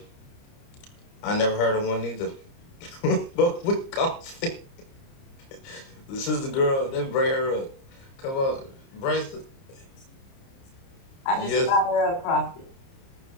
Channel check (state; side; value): late; right; 30 ms